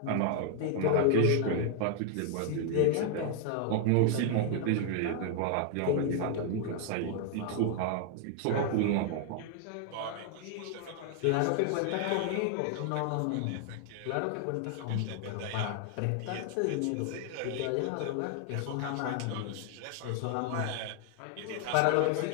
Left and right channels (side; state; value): both; different; correlation 0.00